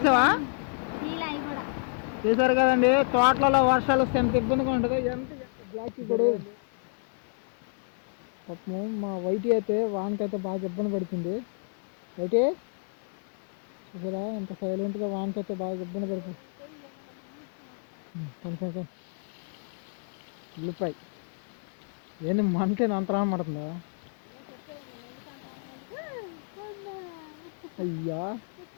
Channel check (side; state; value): right; silent; 58 dB below the other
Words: చూసారు కదండి, తోటలలో వర్షాలు వస్తే ఎంత ఇబ్బందిగా ఉంటుందో. ఎంత బ్లాక్ చూసాడు పాపం. మా వైటి అయితే వానకైతే బాగా ఇబ్బంది పడుతుంది. వైటి చూసారా ఎంత సైలెంట్గా వానకైతే బాగా ఇబ్బంది పడుతుంది. ఉల్లిపాయ ఏంటి మనకే అంతరా పడుతుందా? అయ్యా